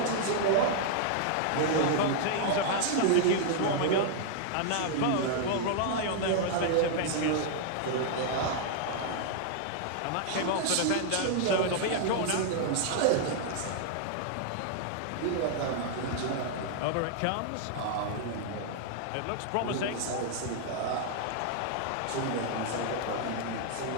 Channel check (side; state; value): both; different; correlation -0.01